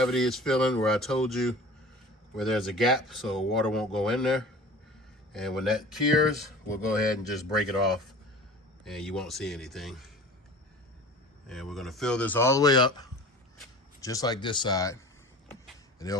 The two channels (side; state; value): both; normal; correlation 0.40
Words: is filling where I told you where there's a gap so water won't go in there. And when that cures, we'll go ahead and just break it off and you won't see anything. And we're gonna fill this all the way up, just like this side. And